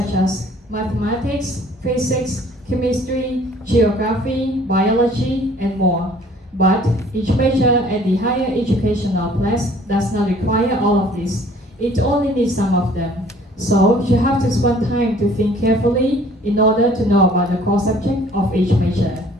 as mathematics, physics, chemistry, geography, biology, and more. But each major at the higher educational class does not require all of this. It only needs some of them. So you have to spend time to think carefully in order to know about the core subject of each major.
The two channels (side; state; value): both; normal; correlation 0.55